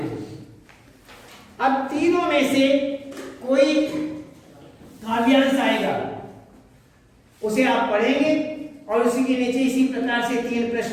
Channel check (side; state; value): both; identical; correlation 1.00